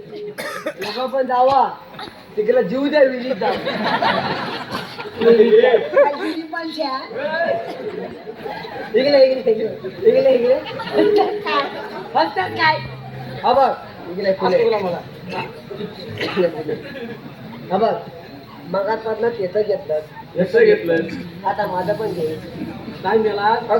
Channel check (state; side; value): identical; both; correlation 1.00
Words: लोक पण जावा तिकडे जीव द्या विजित जाऊ इकडे हसतात काय हा बघ इकडे फुले मला हा बघ मगातपासून तेच घेतलं कसं घेतलं आता माझं पण घे काय मेला